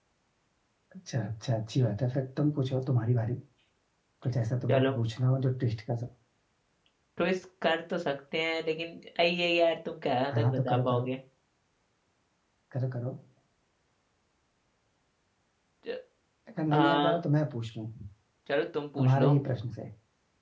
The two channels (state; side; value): identical; both; correlation 1.00